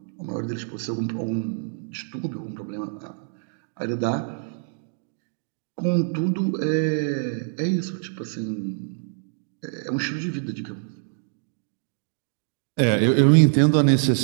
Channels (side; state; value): left; silent; digital silence